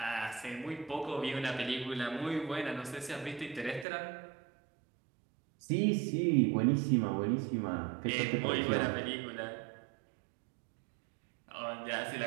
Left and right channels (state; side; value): drops out; left; at 3.9 s